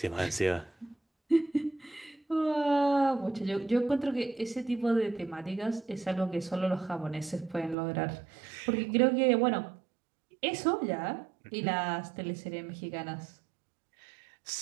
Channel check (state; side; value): drops out; left; at 7.8 s